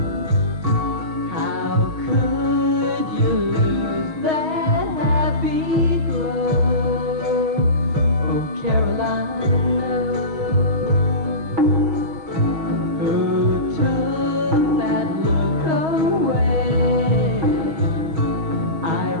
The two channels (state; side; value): late; left; 6.3 ms